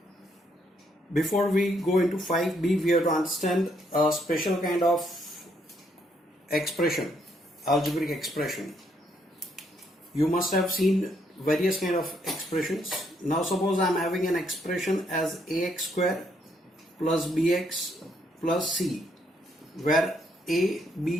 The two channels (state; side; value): normal; both; correlation 0.72